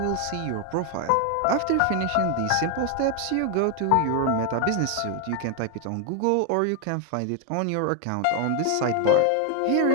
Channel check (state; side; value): different; both; correlation 0.00